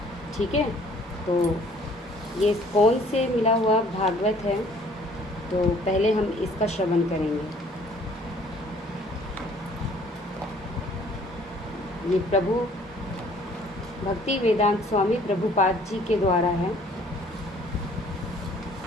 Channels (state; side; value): normal; both; correlation 0.57